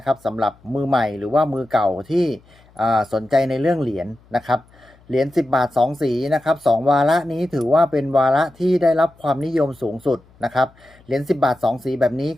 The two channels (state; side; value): noise; left; hum, 29 dB below the sound